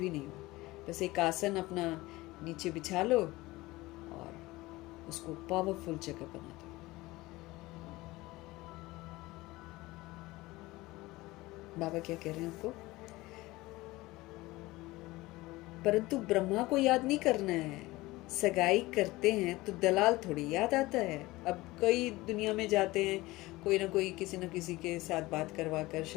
नहीं हो, बस एक आसन अपना नीचे बिछा लो और उसको पावरफुल जगह बना दो। बाबा क्या कह रहे हैं आपको? परंतु ब्रह्मा को याद नहीं करना है। सगाई करते हैं तो दलाल थोड़ी याद आता है। अब कई दुनिया में जाते हैं, कोई ना कोई किसी न किसी के साथ बात करवा कर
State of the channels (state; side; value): quieter; right; 19.9 dB